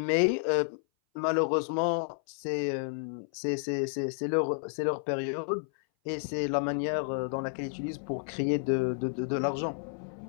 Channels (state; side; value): silent; right; 57 dB below the other